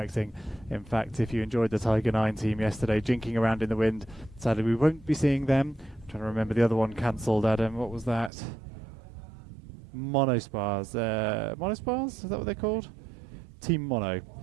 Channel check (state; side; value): drops out; left; at 8.3 s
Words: In fact, if you enjoyed the Tiger 9 team yesterday jinking around in the wind, sadly we won't be seeing them. I'm trying to remember the other one cancelled, Adam. What was that? Monospars. Monospars? Is that what they're called? Team